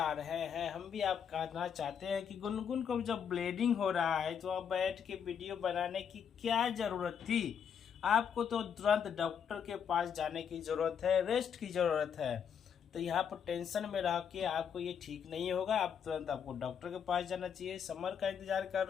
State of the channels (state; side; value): quieter; right; 7.7 dB